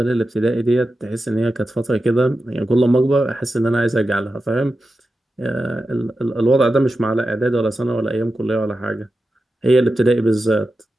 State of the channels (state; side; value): normal; both; correlation 0.91